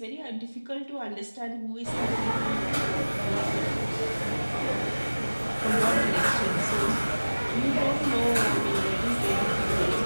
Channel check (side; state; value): both; inverted; correlation -1.00